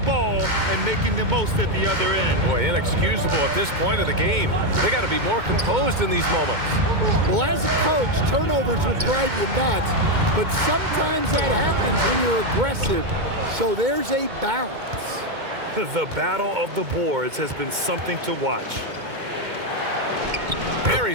and making the most at the other end. Boy, inexcusable at this point of the game. They got to be more composed in these moments. Well, as a coach, turnovers will drive you nuts, but sometimes that happens when you're aggressive. So there's a balance. The battle of the boards has been something to watch.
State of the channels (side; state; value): left; late; 2.2 ms